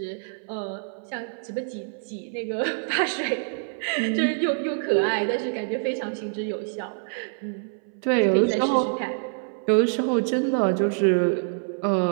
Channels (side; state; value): left; silent; 61 dB below the other